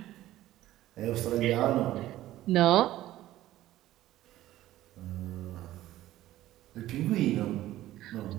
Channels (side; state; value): left; quieter; 14.8 dB